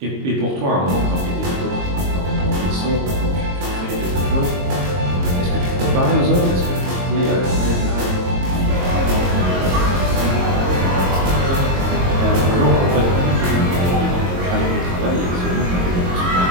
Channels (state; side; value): late; left; 22 ms